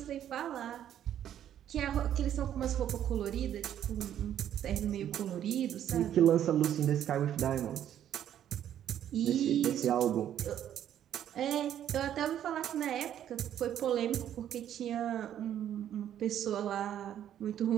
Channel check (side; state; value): left; quieter; 10.6 dB